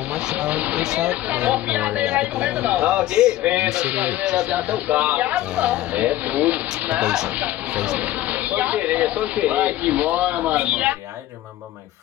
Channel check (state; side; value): quieter; right; 14.7 dB